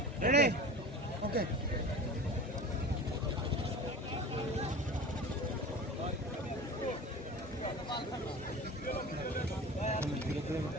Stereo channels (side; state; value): both; normal; correlation 0.36